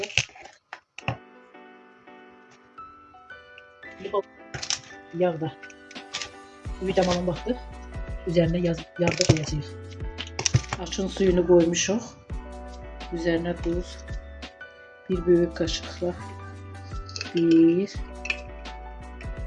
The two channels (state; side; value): identical; both; correlation 1.00